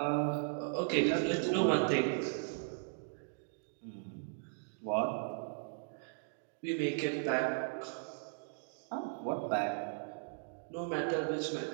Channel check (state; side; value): silent; left; digital silence